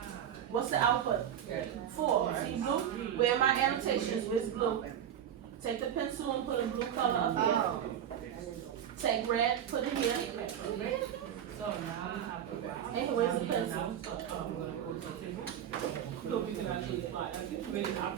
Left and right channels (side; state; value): left; quieter; 9.6 dB